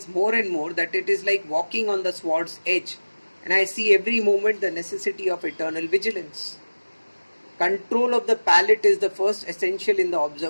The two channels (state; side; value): inverted; both; correlation -1.00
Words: more and more that it is like walking on the sword's edge, and I see every moment the necessity of eternal vigilance. Control of the palate is the first essential in the